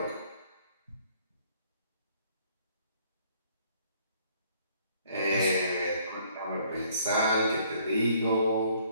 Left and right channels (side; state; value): both; inverted; correlation -0.62